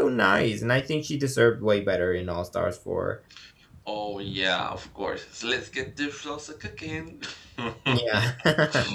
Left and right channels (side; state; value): both; identical; correlation 1.00